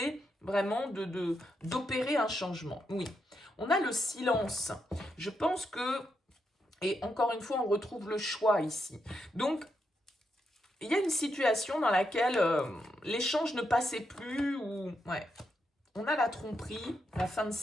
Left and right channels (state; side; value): normal; both; correlation 0.82